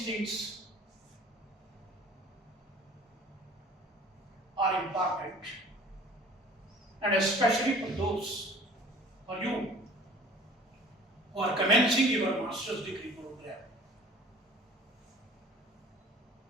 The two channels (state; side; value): normal; both; correlation 0.48